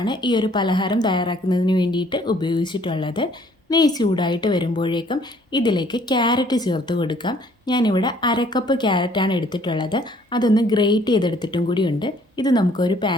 ഈ ഒരു പലഹാരം തയ്യാറാക്കുന്നതിന് വേണ്ടിയിട്ട് ഉപയോഗിച്ചിട്ടുള്ളത്. നെയ്യ് ചൂടായിട്ട് വരുമ്പോഴേക്കും ഇതിലേക്ക് ക്യാരറ്റ് ചേർത്ത് കൊടുക്കാം. ഞാനിവിടെ 1/2 കപ്പ് ക്യാരറ്റാണ് എടുത്തിട്ടുള്ളത്. അതൊന്ന് ഗ്രേറ്റ് ചെയ്തെടുത്തിട്ടും കൂടിയുണ്ട്. ഇത് നമുക്കൊരു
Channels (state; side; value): normal; both; correlation 0.60